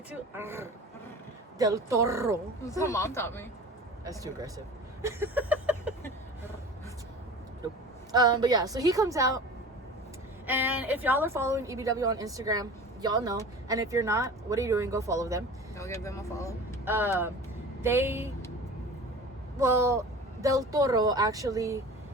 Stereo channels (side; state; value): both; normal; correlation 0.38